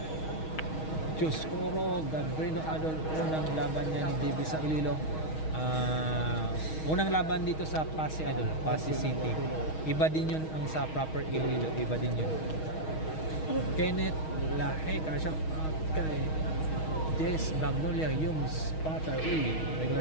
Diyos Coro, Gabrino Idol, unang laban niya ni JB sa Iloilo. Unang laban dito sa Pasig Idol, Pasig City. Iba din yun ang sa proper Iloilo, iba din yun. Kenneth Lahe, shout out kay Jess Magnolia, yung spotter. Uy, regular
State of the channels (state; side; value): late; right; 6.3 ms